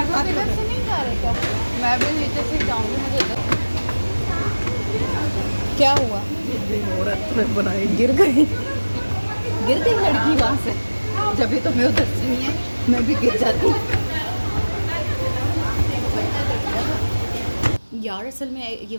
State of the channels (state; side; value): inverted; both; correlation -1.00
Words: लोग इधर से नहीं जा रहे क्या? मैं भी नीचे से जाऊंगी, मुझे तो क्या हुआ, बनाई गिर गई लड़की वहाँ से, जब भी तो मैं उधर से नहीं है मैं भी गिर जाती यार। असल में ये